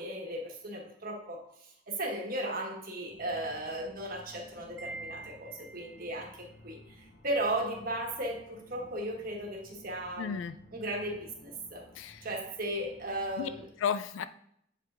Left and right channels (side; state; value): both; normal; correlation -0.05